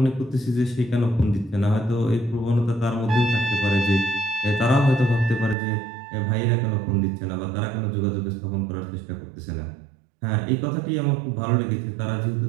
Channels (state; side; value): drops out; left; at 5.6 s